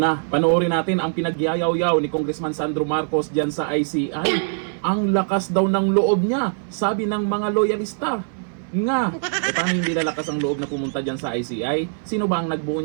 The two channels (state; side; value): silent; left; 60 dB below the other